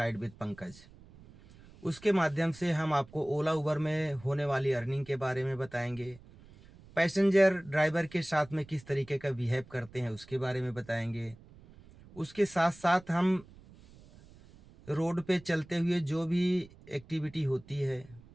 विद पंकज। उसके माध्यम से हम आपको ओला उबर में होने वाली अर्निंग के बारे में बताएंगे, पैसेंजर ड्राइवर के साथ में किस तरीके का बिहेव करते हैं उसके बारे में बताएंगे। उसके साथ साथ हम रोड पे चलते हुए जो भी एक्टिविटी होती है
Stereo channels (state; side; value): noise; right; rumble, 23 dB below the sound